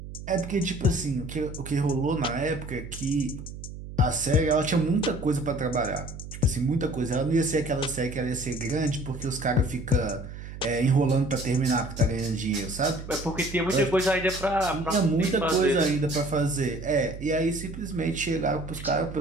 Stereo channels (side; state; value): right; noise; hum, 11 dB below the sound